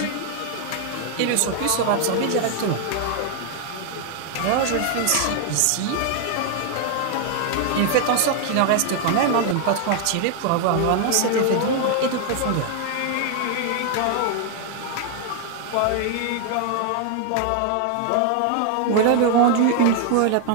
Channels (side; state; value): both; different; correlation 0.00